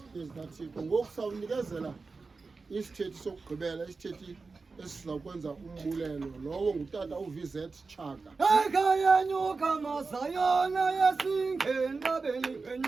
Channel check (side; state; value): left; quieter; 4.2 dB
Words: zikaThixo ngoku sawunikezela isithethi sokugqibela isithethi esizakwenza umbulelo lowo ngutata uVZ Chaka ekhayanyuka masayona yasingenqabeni